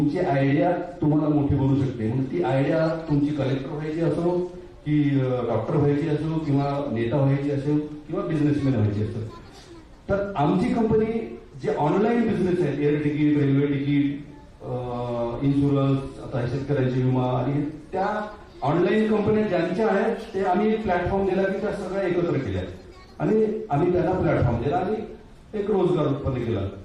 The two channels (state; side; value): identical; both; correlation 1.00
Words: आयडिया तुम्हाला मोठी बनवू शकते. म्हणून ती आयडिया तुमची कलेक्टर व्हायची असो की डॉक्टर व्हायची असो किंवा नेता व्हायची असो किंवा बिझनेसमॅन व्हायची असो, तर आमची कंपनी जे ऑनलाईन बिझनेस आहेत, air ticket, railway ticket, insurance, आता शेतकऱ्यांची विमा आणि त्या ऑनलाईन कंपन्या ज्यांच्या आहेत ते आम्ही एक प्लॅटफॉर्म दिला की त्या सगळ्या एकत्र केल्या आणि आम्ही त्यांना प्लॅटफॉर्म दिला आणि एक रोजगार उत्पन्न केला.